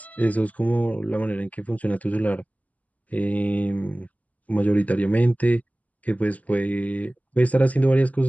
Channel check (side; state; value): right; late; 0.075 ms